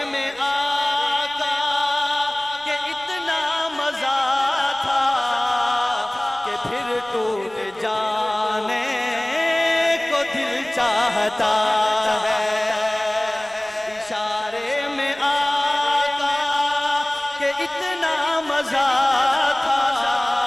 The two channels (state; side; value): noise; right; rumble, 30 dB below the sound